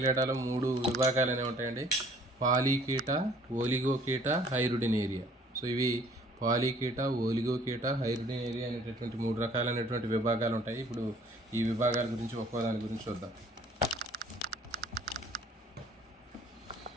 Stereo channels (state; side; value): normal; both; correlation 0.56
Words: 3 విభాగాలు అనేవి ఉంటాయండి. పాలీకీట, ఓలిగోకీట, హైరుడినేరియా. సో ఇవి పాలీకీట, ఓలిగోకీట, హైరుడినేరియా అనేటటువంటి 3 రకాలైనటువంటి విభాగాలు ఉంటాయి. ఇప్పుడు ఈ విభాగాల గురించి ఒక్కో దాని గురించి చూద్దాం.